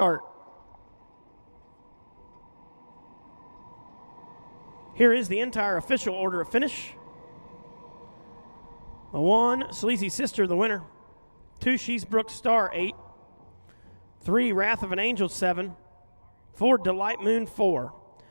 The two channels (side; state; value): both; inverted; correlation -1.00